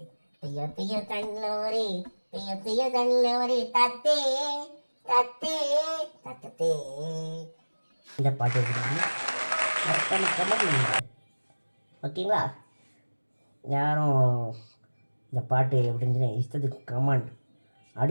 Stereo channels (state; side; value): inverted; both; correlation -1.00